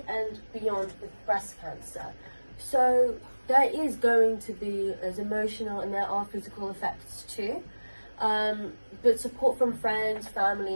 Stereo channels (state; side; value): inverted; both; correlation -1.00